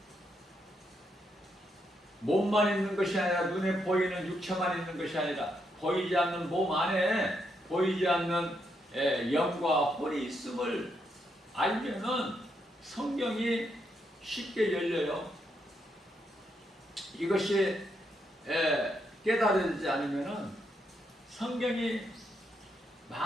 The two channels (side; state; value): both; normal; correlation 0.79